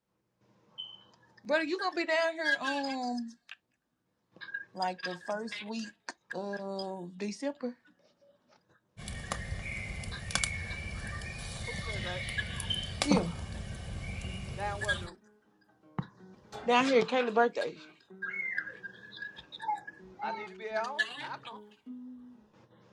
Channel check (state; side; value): identical; both; correlation 1.00